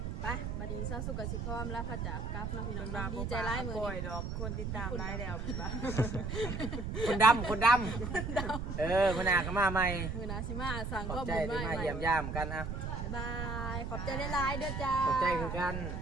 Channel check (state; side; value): noise; right; rumble, 3 dB below the sound